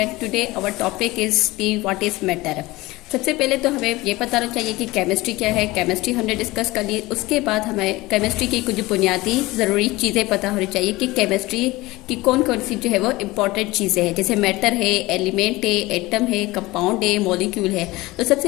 Today our topic is the what is matter. सबसे पहले तो हमें ये पता होना चाहिए कि केमिस्ट्री क्या है। केमिस्ट्री हमने डिस्कस कर ली। उसके बाद हमें केमिस्ट्री की कुछ बुनियादी ज़रूरी चीज़ें पता होनी चाहिए कि केमिस्ट्री की कौन कौन सी जो है वो इम्पॉर्टेंट चीज़ें हैं, जैसे मैटर है, एलिमेंट है, एटम है, कंपाउंड है, मॉलिक्यूल है। तो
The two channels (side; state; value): right; quieter; 20.1 dB